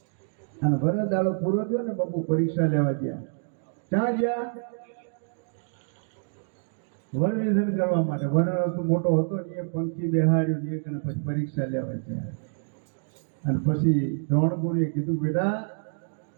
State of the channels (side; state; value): left; silent; digital silence